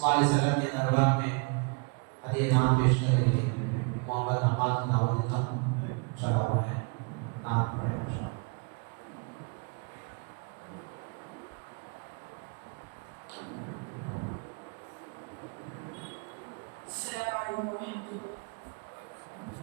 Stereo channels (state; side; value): quieter; left; 33.8 dB